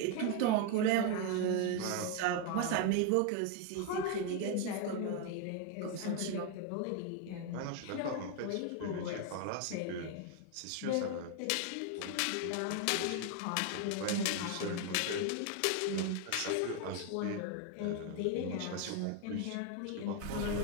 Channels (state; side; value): different; both; correlation 0.01